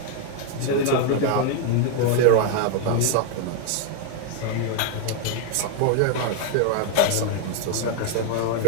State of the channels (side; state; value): both; different; correlation 0.00